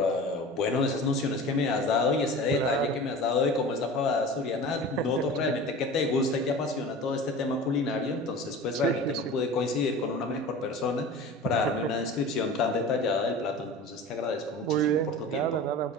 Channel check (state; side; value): normal; both; correlation 0.36